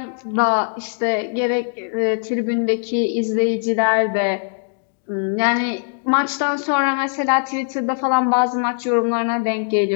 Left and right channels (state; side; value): silent; right; 64 dB below the other